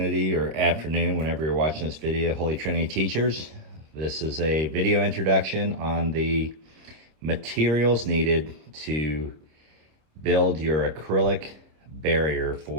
or afternoon, whenever you're watching this video, Holy Trinity teachers. This is a video introduction on the materials needed to build your acrylic barrier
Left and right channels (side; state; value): left; late; 26 ms